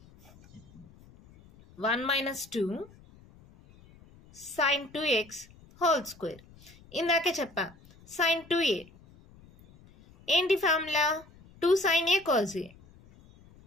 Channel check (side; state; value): left; noise; rumble, 25 dB below the sound